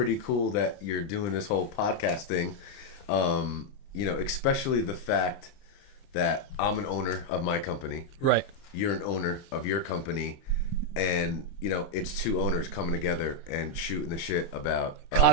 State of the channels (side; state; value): right; late; 30 ms